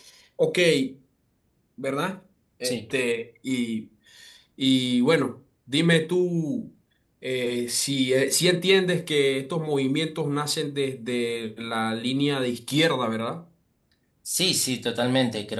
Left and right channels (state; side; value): identical; both; correlation 1.00